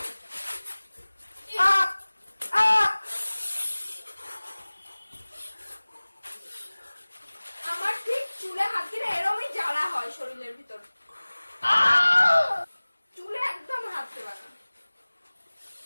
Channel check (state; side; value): inverted; both; correlation -1.00